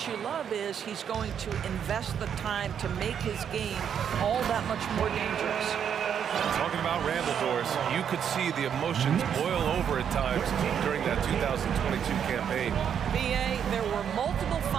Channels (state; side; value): quieter; left; 8.3 dB